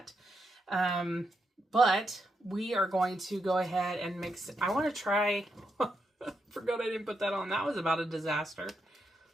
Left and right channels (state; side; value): normal; both; correlation 0.82